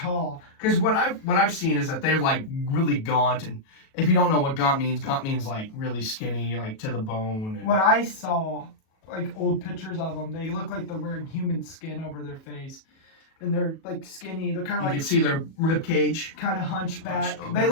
Because what I've seen is that they're like really gaunt, and if you don't know what gaunt means like really skinny, like to the bone. And what I saw, like old pictures of them, they look like they're wearing human skin over their face. And they're like skinny. They're kind of like, you can see their rib cage. Kind of hunchback. They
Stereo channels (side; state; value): right; late; 37 ms